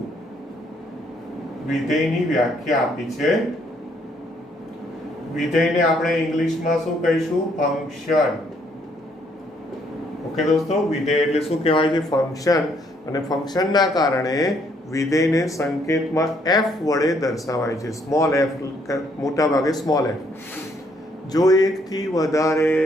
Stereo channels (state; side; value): normal; both; correlation 0.69